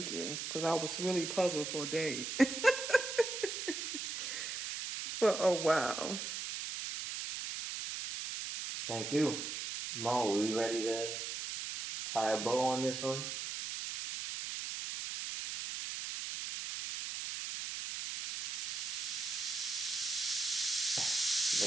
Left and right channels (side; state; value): right; noise; hiss, 4 dB below the sound